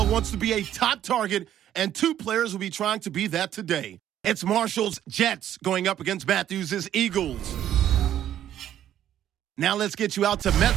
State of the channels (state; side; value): quieter; left; 11.2 dB